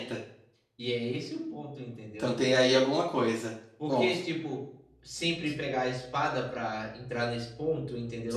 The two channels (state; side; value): identical; both; correlation 1.00